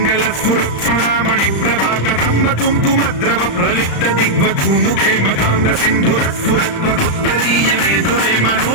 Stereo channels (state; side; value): late; right; 35 ms